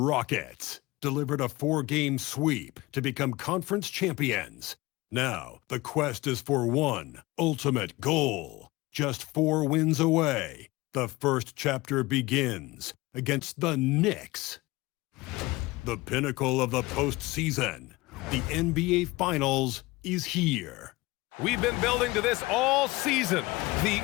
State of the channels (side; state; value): right; quieter; 21.1 dB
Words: delivered a 4-game sweep to become conference champions. Now, the quest is for one ultimate goal. Just 4 wins away, the first chapter begins against the Knicks. The pinnacle of the postseason, the NBA Finals, is here. We've been building to this all season, the